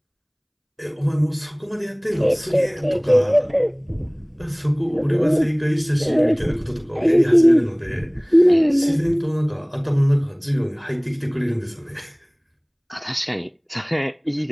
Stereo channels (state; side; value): identical; both; correlation 1.00